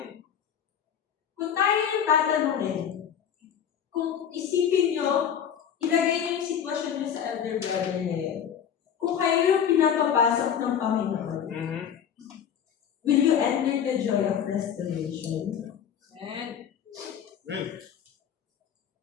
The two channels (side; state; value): right; quieter; 8.6 dB